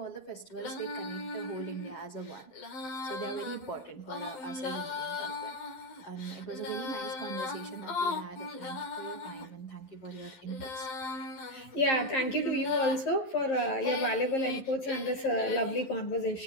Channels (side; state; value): right; late; 12 ms